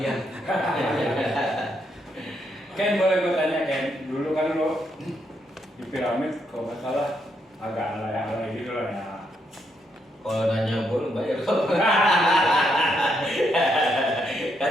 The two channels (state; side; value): normal; both; correlation 0.77